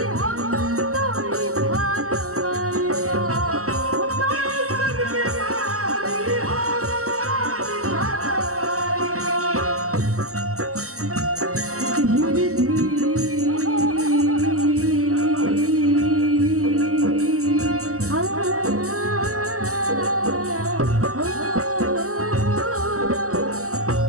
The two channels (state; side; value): late; left; 0.65 ms